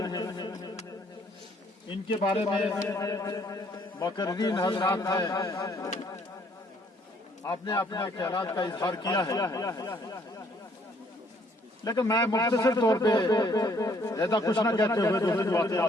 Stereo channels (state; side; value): normal; both; correlation 0.64